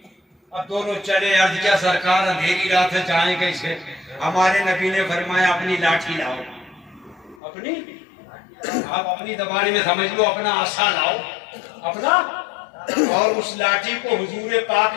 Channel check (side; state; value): right; drops out; at 7.4 s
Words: अब दोनों चले। अर्ज क्या सरकार, अंधेरी रात है, जाए कैसे? हमारे नबी ने फरमाया अपनी लाठी लाओ। अपनी, आप अपनी जबान में समझ लो, अपना आसा लाओ अपना। और उस लाठी को हुजूर पाक